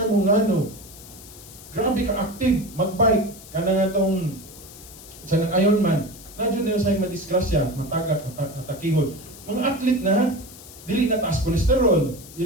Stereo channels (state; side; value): noise; left; hiss, 18 dB below the sound